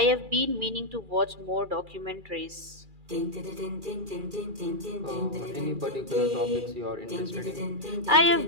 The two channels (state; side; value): late; left; 2.4 ms